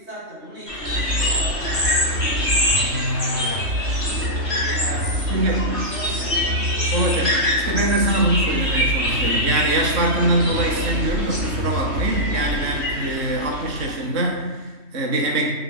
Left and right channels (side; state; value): left; late; 3.2 ms